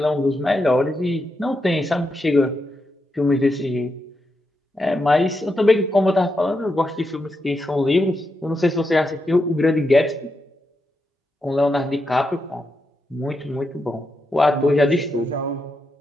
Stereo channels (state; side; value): normal; both; correlation 0.85